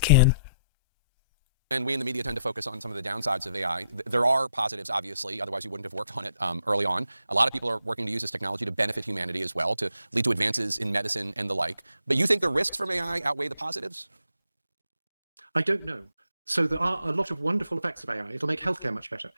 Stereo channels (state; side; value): inverted; both; correlation -0.76